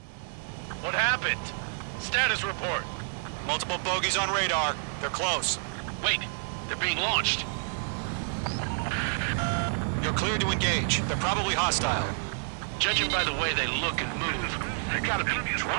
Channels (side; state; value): left; silent; 55 dB below the other